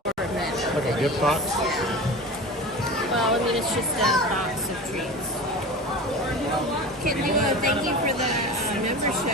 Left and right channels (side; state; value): both; normal; correlation 0.32